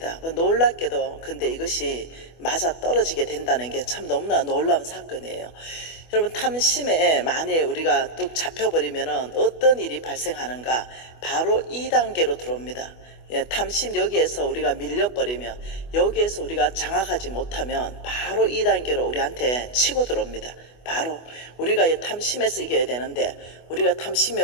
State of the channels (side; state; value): right; late; 24 ms